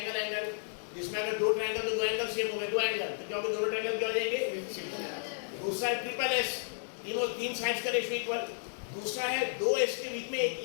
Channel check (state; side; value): silent; right; digital silence